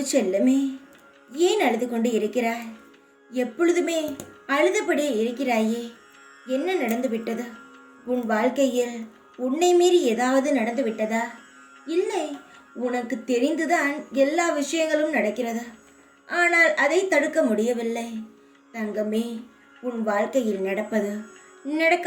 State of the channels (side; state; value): both; identical; correlation 1.00